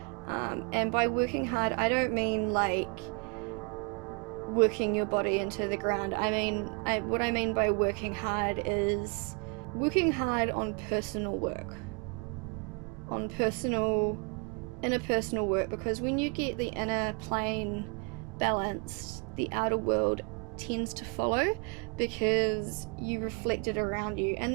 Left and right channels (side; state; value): left; quieter; 33.5 dB